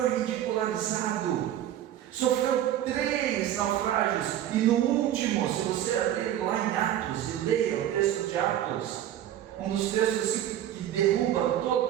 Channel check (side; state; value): left; quieter; 11.7 dB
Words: ridicularizado, sofreu 3 naufrágios, e no último, se você abrir lá em Atos e leia o texto de Atos, um dos textos que derruba